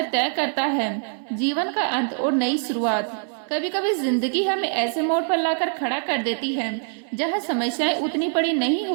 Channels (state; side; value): silent; left; 63 dB below the other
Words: तय करता है जीवन का अंत और नई शुरुआत। कभी कभी जिंदगी हमें ऐसे मोड़ पर लाकर खड़ा कर देती है जहां समस्याएं उतनी बड़ी नहीं